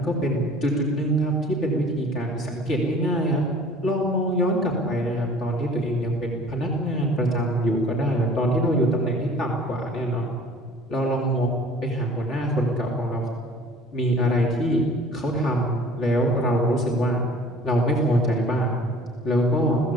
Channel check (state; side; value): normal; both; correlation 0.49